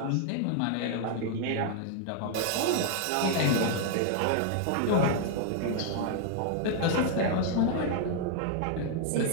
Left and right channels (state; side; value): different; both; correlation 0.00